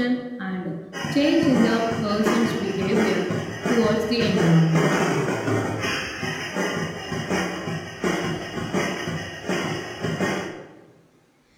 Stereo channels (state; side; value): identical; both; correlation 1.00